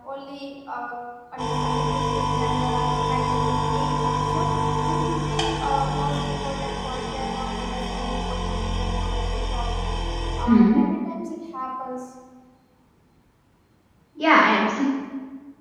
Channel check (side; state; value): both; identical; correlation 1.00